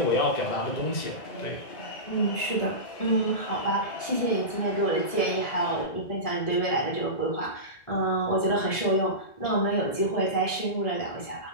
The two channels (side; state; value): right; late; 1.7 ms